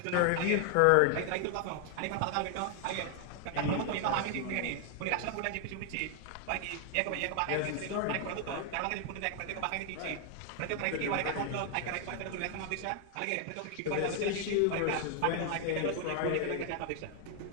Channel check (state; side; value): different; both; correlation 0.00